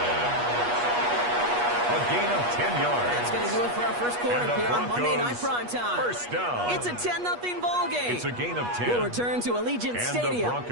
A gain of 10 yards. That's going to do it for our first quarter here on Monday Night Primetime. First down. It's a 10-0 ball game. It's a gain of 10. We'll return to Allegiant and Stadium the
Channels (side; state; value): left; late; 8.3 ms